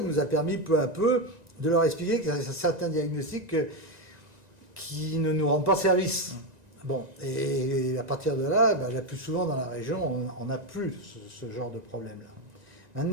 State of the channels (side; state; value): left; late; 1.9 ms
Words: nous a permis peu à peu de leur expliquer qu'il y a certains diagnostics qui ne nous rendent pas service. Bon, et à partir de là, la plus souvent dans la région, on n'a plus ce genre de problème-là.